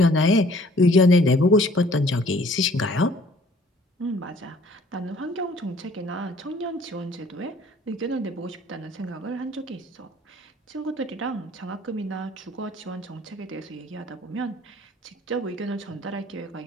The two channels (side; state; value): both; normal; correlation 0.56